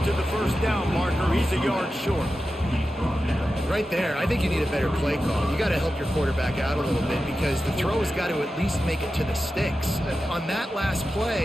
to the 1st down marker. He's a yard short. Right there, I think you need a better play call. You got to help your quarterback out a little bit because the throw has got to at least make it to the sticks. On that last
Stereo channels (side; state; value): both; normal; correlation 0.92